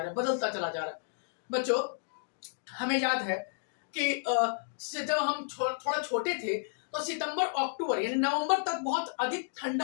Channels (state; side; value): silent; right; digital silence